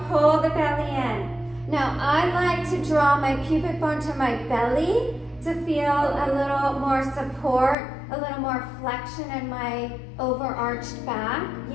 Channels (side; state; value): right; drops out; at 7.8 s